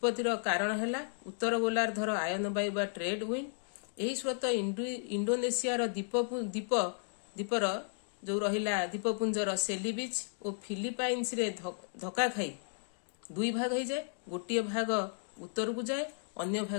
कारण है उत्तर गोलार्धर आयन वायु बा ट्रेड विंड। यही स्रोत इंडोनेशियार द्वीपर जो रहिला द्वीपपुंजर सेली बीच और फिलिपाइन्स रे धक्का खाई दुई भाग हो जाए। गोटे भाग उत्तर को जाए, अन्य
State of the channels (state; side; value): silent; right; digital silence